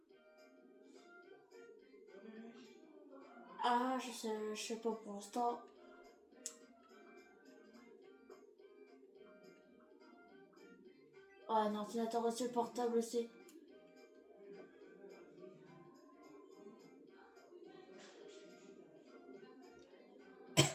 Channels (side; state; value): both; identical; correlation 1.00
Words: Ah, je sais pas pour l'instant. Ouais, un ordinateur aussi portable aussi.